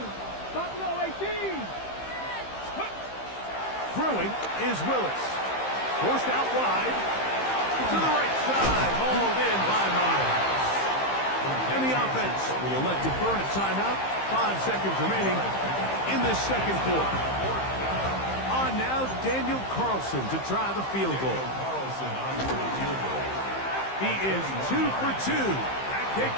Buffalo 18. Throwing is Willis. Forced out wide. To the right side. Hauled in by Miles. And the offense will elect to burn a timeout. 5 seconds remaining in this second quarter. On now, Daniel Carlson to try the field goal. He is 2 for 2. That kick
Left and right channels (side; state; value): right; late; 15 ms